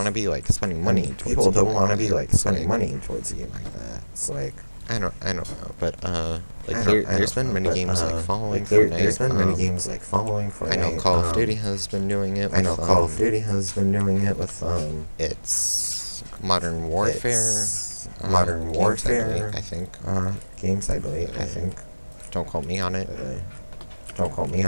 to be like spending money. People don't want to be like spending money towards a game like that. It's like I don't know, but there's been many games like following Fortnite. There's been many games like following Fortnite. I know Call of Duty has been doing it. With, it's Modern Warfare. I think. Games, I believe. Don't quote me on it. I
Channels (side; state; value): both; inverted; correlation -1.00